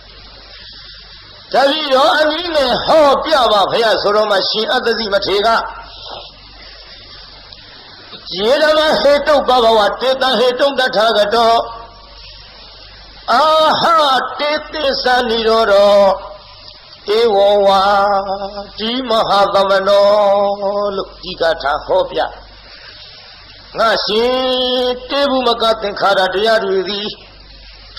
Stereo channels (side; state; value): both; identical; correlation 1.00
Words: တပည့်တော်အနည်းနဲ့ဟောပြပါဗျာဆိုတော့မှရှင်အတ္တဇိမထေရက ယေဓမဟေတုဘဂဝတေတံဟေတုတထာဂတောအာဟတေတိသနိရောဓဧဝဝါဒီမဟာသမနောလို့ဒီကထာဟောပြငါရှင်တေဘုမကသင်္ခါရတရားတွေသည်